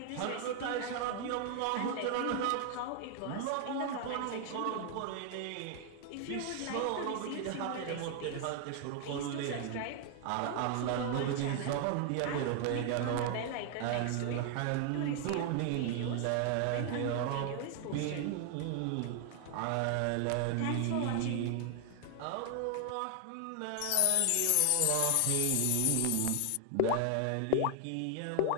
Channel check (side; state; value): both; different; correlation 0.00